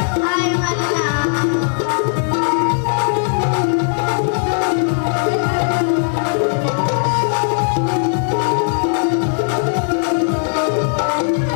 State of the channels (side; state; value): right; silent; digital silence